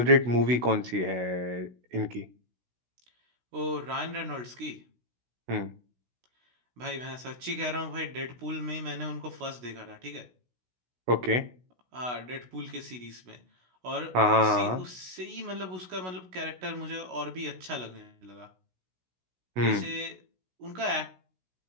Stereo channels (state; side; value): late; left; 16 ms